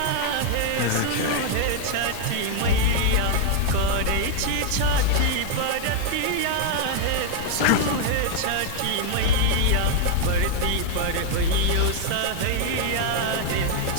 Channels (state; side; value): different; both; correlation 0.00